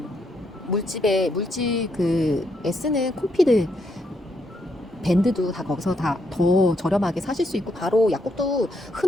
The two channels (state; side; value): normal; both; correlation 0.77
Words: 물집 쓰는 콤피드 밴드도 다 거기서 다 더 저렴하게 사실 수 있고, 바로 약국도